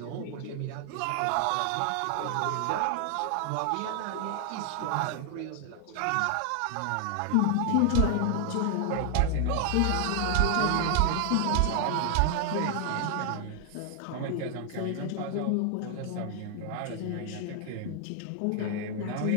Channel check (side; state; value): both; different; correlation 0.00